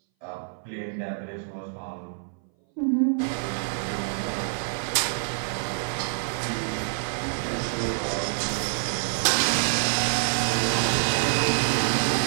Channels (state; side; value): silent; left; 59 dB below the other